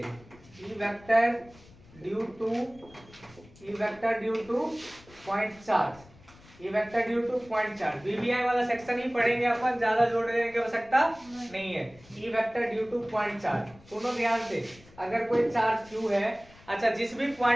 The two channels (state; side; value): noise; left; rumble, 24 dB below the sound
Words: E vector due two point charge, BBI वाला सेक्शन ही पढ़ेंगे अपन, ज्यादा जोड़ देने की आवश्यकता नहीं है। E vector due two point charge, सुनो ध्यान से, अगर कोई चार्ज Q है, अच्छा जिस भी